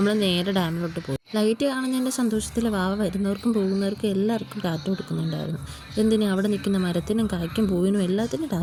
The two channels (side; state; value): both; identical; correlation 1.00